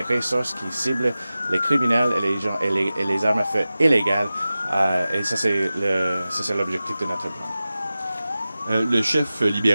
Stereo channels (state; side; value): inverted; both; correlation -0.95